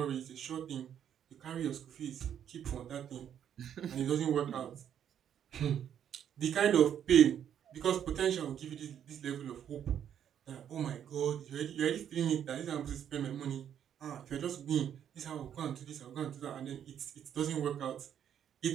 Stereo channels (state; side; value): quieter; left; 9.4 dB